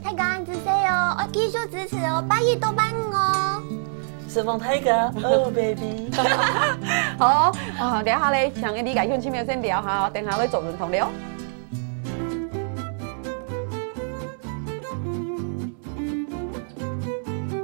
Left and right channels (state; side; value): silent; left; 62 dB below the other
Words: 大家安子 say 哦，我繼續支持哦，拜一到拜五哦。釋放大家，Oh baby。好，等下咧，想你嚟鄉親朋友先聊下，等下咧做人同聊。